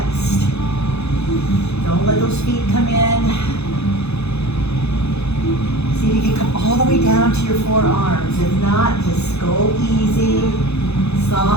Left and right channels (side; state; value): right; late; 0.80 ms